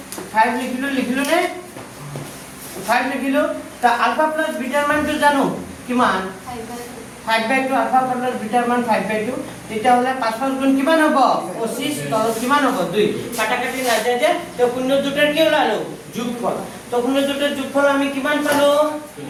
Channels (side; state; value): both; identical; correlation 1.00